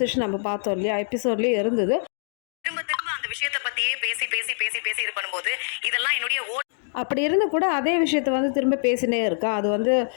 நம்ம பார்த்தோம் இல்லையா, எபிசோட்லேயே இருந்தது. திரும்ப திரும்ப அந்த விஷயத்தை பற்றியே பேசி பேசி பேசி பேசி இது பண்ணும்போது இதெல்லாம் என்னுடைய அப்படி இருந்து கூட அதே விஷயத்தை வந்து திரும்ப பேசினே இருக்கா. அது வந்து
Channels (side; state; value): right; silent; digital silence